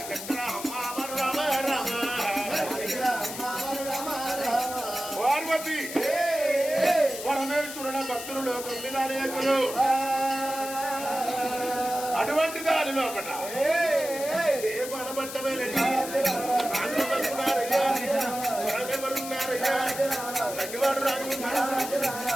పార్వతి పరమేశ్వరుడ భక్తులు లోకం మీద అనేకులు అటువంటి దాని లోపల ఏ బలపట్టమేనయ్యా ఎవరున్నారయ్యా తగ్గివాడు రాజు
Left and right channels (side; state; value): left; noise; hiss, 9 dB below the sound